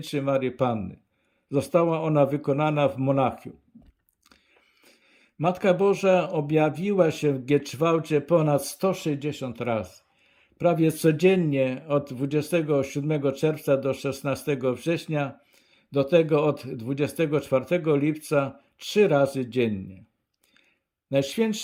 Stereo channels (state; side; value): identical; both; correlation 1.00